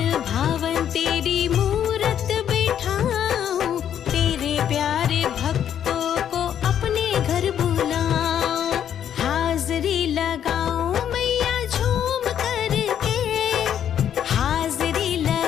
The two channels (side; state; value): right; quieter; 9.5 dB